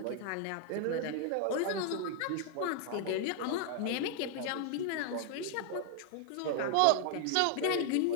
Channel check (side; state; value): both; different; correlation 0.00